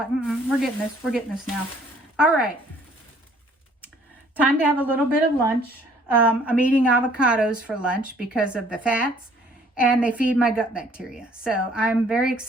we're getting this. We're getting this now. All right. Time to have a little bit of lunch. I'm eating avocados for lunch because of the fats, and they feed my gut bacteria. So I'm very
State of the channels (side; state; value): both; normal; correlation 0.59